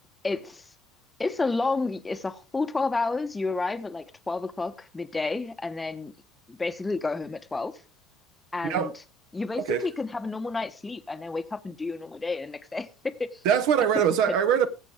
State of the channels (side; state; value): both; normal; correlation 0.61